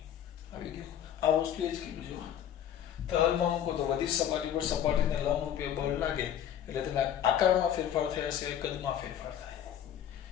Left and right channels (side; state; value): right; quieter; 10.0 dB